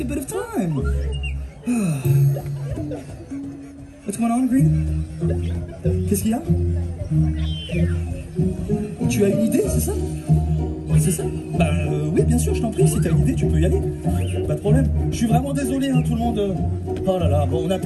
a bit of time. What's going on, Green? Qu'est-ce qu'il y a? Tu as une idée, c'est ça? C'est ça? Bah oui, bien sûr, je t'en prie, si t'as une idée, tu peux y aller. Pas de problème. Je suis vraiment désolé, hein, tout le monde. Oh là là, bon, on a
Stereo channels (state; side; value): identical; both; correlation 1.00